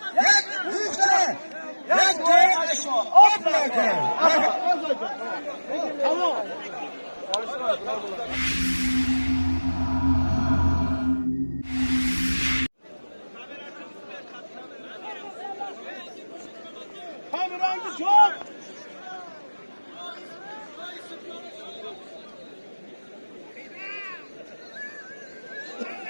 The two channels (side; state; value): both; inverted; correlation -1.00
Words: Yak büyükse. Yak doyar. Of bırakın. Tamam. Kamerayı çok.